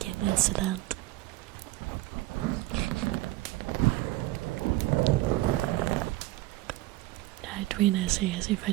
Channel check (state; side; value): quieter; left; 17.5 dB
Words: incident. Between I say as if I